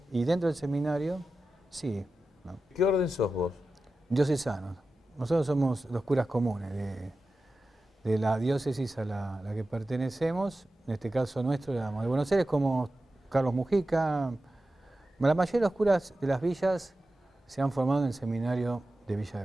y dentro del seminario, sí. ¿No? ¿Qué orden sos vos? Diocesanos. Nosotros somos los curas comunes de la diócesis a la que pertenecemos, en este caso nuestro, de Buenos Aires, como Carlos Mujica. La mayoría de los curas de las villas se han formado en el seminario de Villa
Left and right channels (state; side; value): normal; both; correlation 0.93